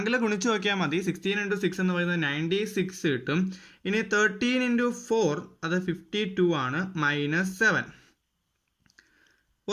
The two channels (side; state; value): both; identical; correlation 1.00